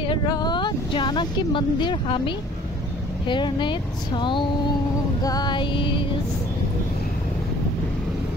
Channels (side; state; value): both; normal; correlation 0.53